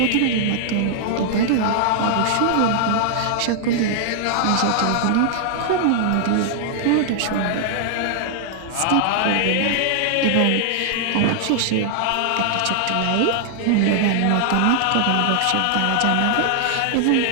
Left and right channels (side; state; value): both; different; correlation 0.00